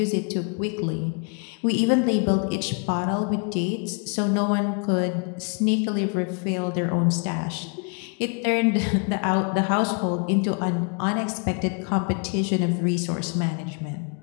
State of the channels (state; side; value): quieter; right; 38.8 dB